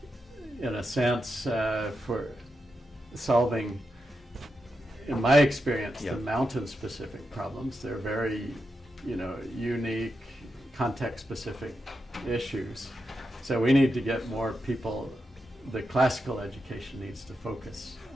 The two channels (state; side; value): normal; both; correlation 0.86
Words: In a sense, for solving, in my experience, the mountain-specific problems, they're very, unique, context-specific issues. So we need to get more people. The classical education needs to focus